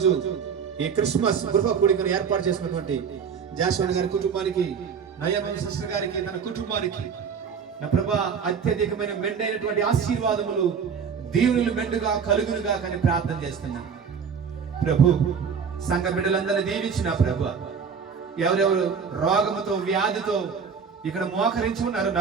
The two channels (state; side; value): quieter; left; 6.5 dB